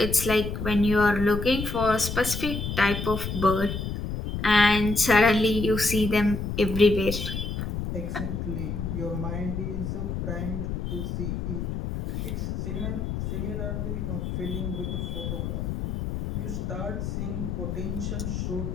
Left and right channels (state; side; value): noise; left; rumble, 3 dB below the sound